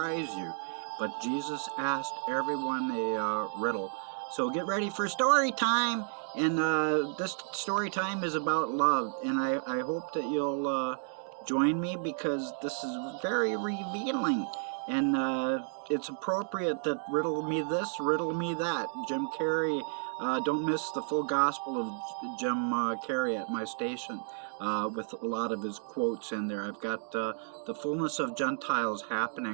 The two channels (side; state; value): left; silent; digital silence